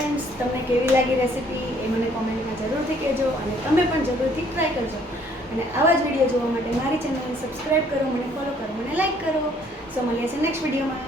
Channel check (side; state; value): both; normal; correlation 0.62